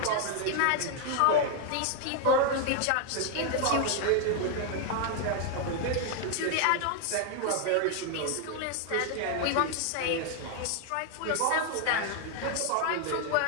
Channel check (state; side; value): different; both; correlation 0.00